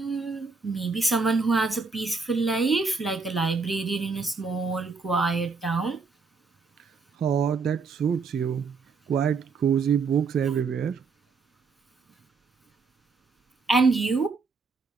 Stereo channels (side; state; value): left; quieter; 4.6 dB